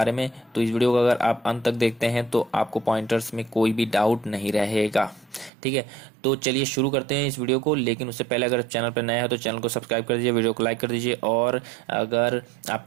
में। तो इस वीडियो को अगर आप अंत तक देखते हैं तो आपको पॉइंटर्स में कोई भी डाउट नहीं रहेगा। ठीक है, तो चलिए शुरू करते हैं इस वीडियो को। लेकिन उससे पहले अगर चैनल पर नया है तो चैनल को सब्सक्राइब कर दीजिए, वीडियो को लाइक कर दीजिए, और अगर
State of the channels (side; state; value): left; drops out; at 5.5 s